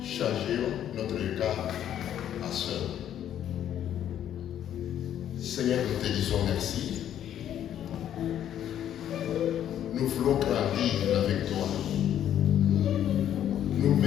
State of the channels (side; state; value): right; quieter; 10.6 dB